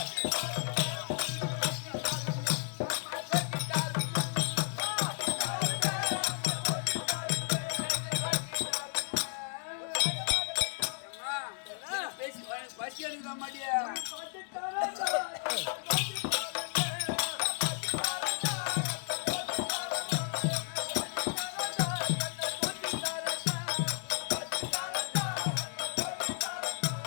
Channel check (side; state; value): right; silent; 56 dB below the other